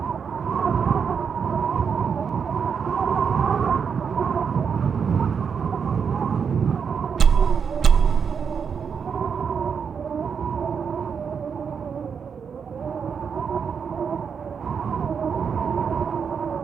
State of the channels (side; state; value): left; quieter; 6.6 dB